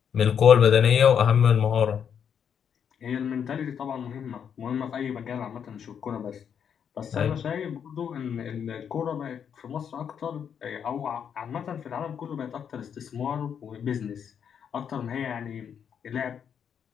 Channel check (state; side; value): quieter; right; 7.9 dB